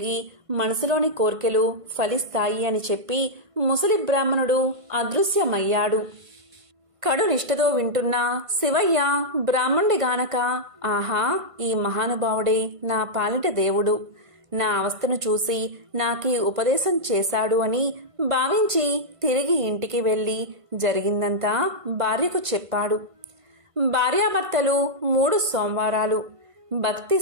మనసులోని కోర్కెలు ఫలిస్తాయి అని చెప్పి ముసలి బ్రాహ్మణుడు అదృశ్యమయ్యాడు. కడు నిష్ఠతో వింటున్న శివయ్య బ్రాహ్మణుడి గానక, ఆహా, ఈ మహానుభావుడే నా పాలిట దేవుడు, నా అవస్థను చూసి నాకీ ఉపదేశం చేశాడు అని భావించి తిరిగి ఇంటికి వెళ్లి జరిగిందంతా భార్యకు చెప్పాడు. భార్యాభర్తలు 3 సోమవారాలు భక్తి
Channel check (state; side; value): late; left; 1.5 ms